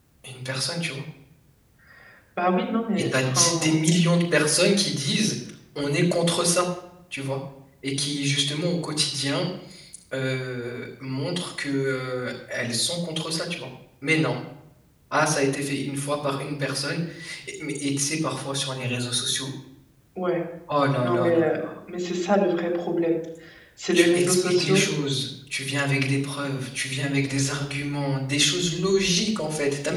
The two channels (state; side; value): identical; both; correlation 1.00